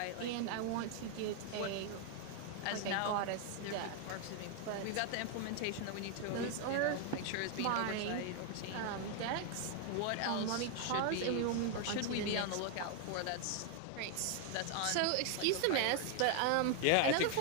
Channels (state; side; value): different; both; correlation 0.00